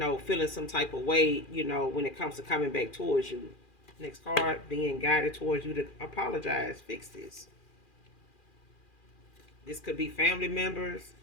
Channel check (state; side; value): late; right; 2.4 ms